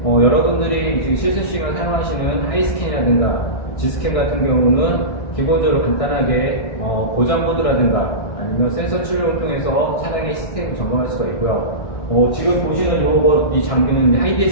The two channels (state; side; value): late; right; 1.6 ms